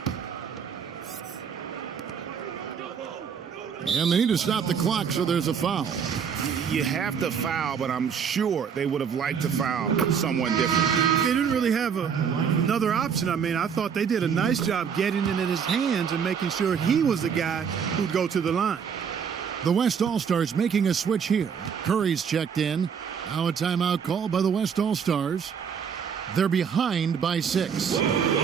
And they need to stop the clock, so there's a foul. You have to foul, but I'm sure they would have liked to foul someone different. They didn't really have another option. I mean, I thought they did a nice job getting it in his hands and making sure he was the guy who'd go to the line. The West All-Stars making a switch here. Curry's checked in. Now a timeout called by the West All-Stars. They're behind by 6.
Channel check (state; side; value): quieter; left; 7.0 dB